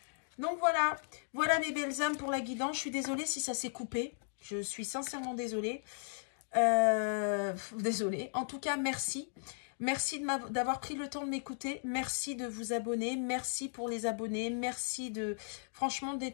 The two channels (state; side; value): silent; right; digital silence